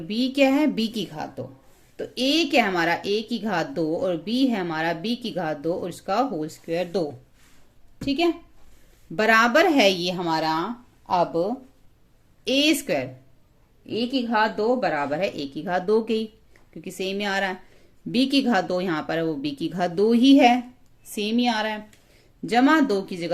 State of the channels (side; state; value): both; identical; correlation 1.00